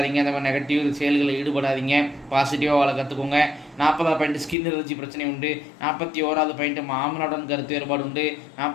அந்த மாதிரி நெகட்டிவ் செயல்களில் ஈடுபடாதீங்க, பாசிட்டிவாக வள கற்றுக்கோங்க. 40வது பாயிண்ட் ஸ்கின் அலர்ஜி பிரச்சனை உண்டு. 41வது பாயிண்ட் மாமனுடன் கருத்து வேறுபாடு உண்டு.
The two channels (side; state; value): right; drops out; at 4.5 s